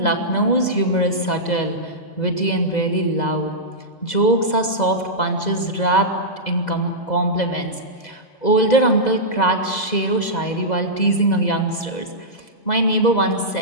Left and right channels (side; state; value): right; late; 2.0 ms